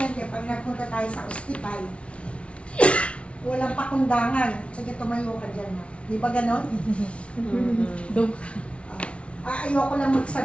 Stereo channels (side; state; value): right; late; 0.061 ms